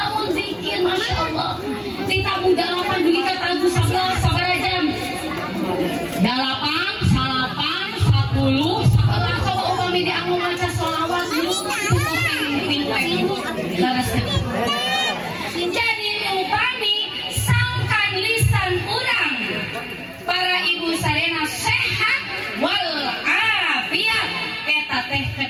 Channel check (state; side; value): identical; both; correlation 1.00